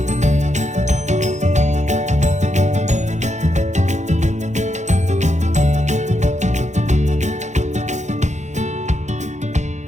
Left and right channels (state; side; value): late; left; 0.34 ms